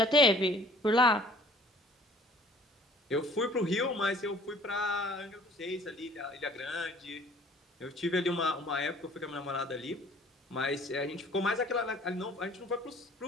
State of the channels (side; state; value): both; normal; correlation 0.53